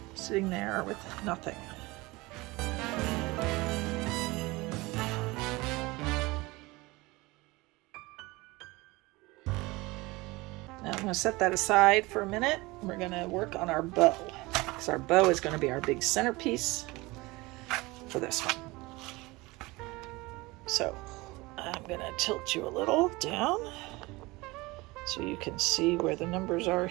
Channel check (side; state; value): left; quieter; 22.3 dB